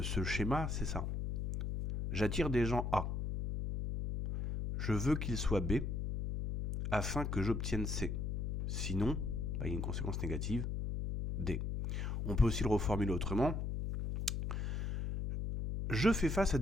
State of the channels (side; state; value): left; noise; hum, 2 dB below the sound